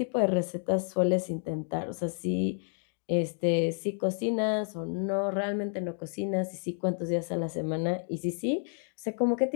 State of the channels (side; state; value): right; silent; 58 dB below the other